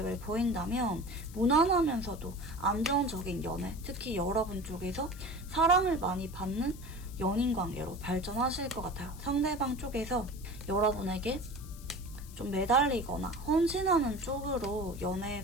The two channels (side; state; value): left; noise; hiss, 19 dB below the sound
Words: 보인다면 무난하면서도 안정적인 연애, 특히 여러분 쪽에서 사랑을 많이 받는 연인 관계로 발전하실 것 같아요. 상대방 쪽에서 여러분에게 좀 매달리거나 헌신하는 쪽으로